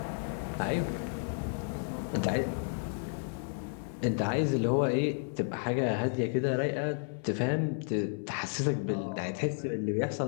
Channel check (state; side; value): silent; right; 56 dB below the other